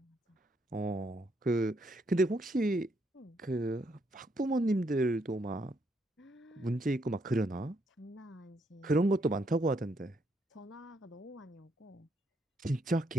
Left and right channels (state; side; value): normal; both; correlation 0.74